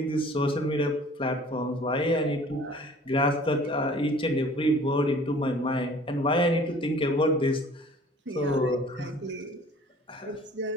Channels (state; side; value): normal; both; correlation 0.50